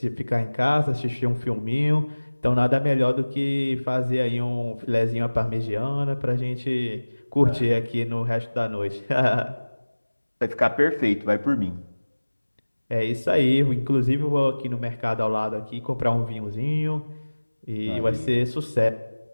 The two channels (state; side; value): inverted; both; correlation -1.00